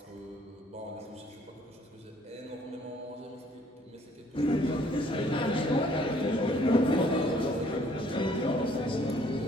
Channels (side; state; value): both; normal; correlation 0.61